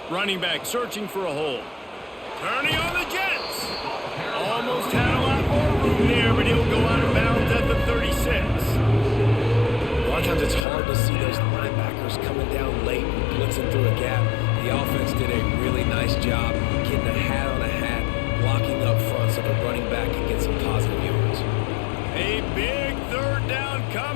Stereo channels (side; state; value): right; drops out; at 10.6 s